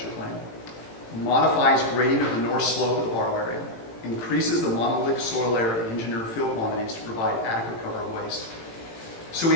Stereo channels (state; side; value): late; right; 18 ms